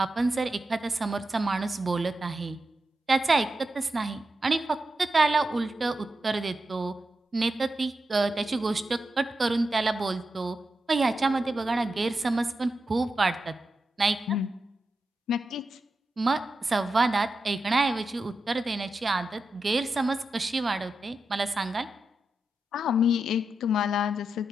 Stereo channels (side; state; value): both; normal; correlation 0.88